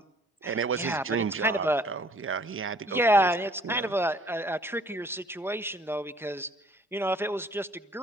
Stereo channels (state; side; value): normal; both; correlation 0.57